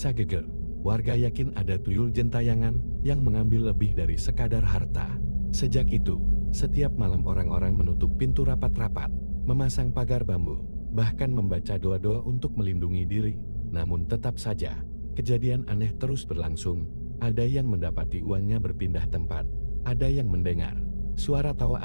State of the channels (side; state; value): both; inverted; correlation -1.00